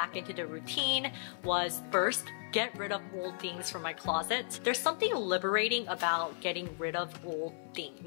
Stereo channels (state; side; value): silent; right; 55 dB below the other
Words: into the routine was first, get rid of old things from my closet. There's something liberating about getting rid of old